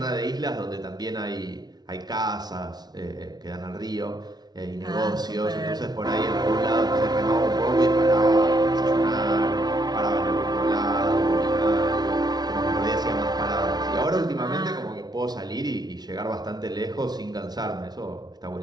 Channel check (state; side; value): late; left; 0.19 ms